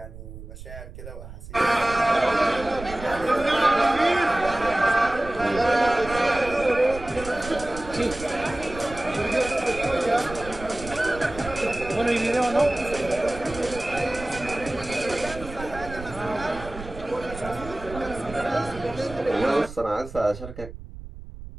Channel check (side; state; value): right; noise; rumble, 13 dB below the sound